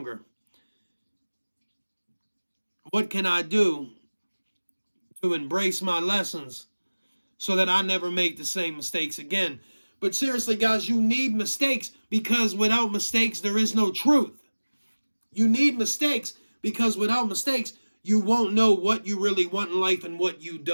What can I do to embrace my lessons so that I never make the same mistakes again? But seriously, guys, you need mistakes because without mistakes, there is no truth. You need mistakes because without mistakes, you won't know what you really want in life and what you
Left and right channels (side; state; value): both; inverted; correlation -1.00